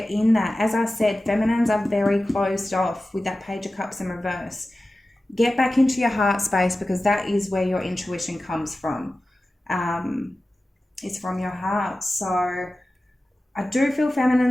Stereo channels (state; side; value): normal; both; correlation 0.95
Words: in that. As I said, feminines are very closed off with that Page of Cups in reverse. Get back into your heart space, because that is where your intuition comes from. It's from your heart. So I do feel